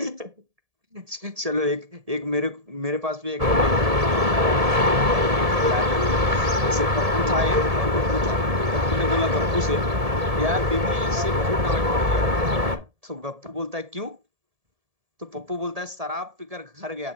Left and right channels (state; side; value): late; left; 1.7 ms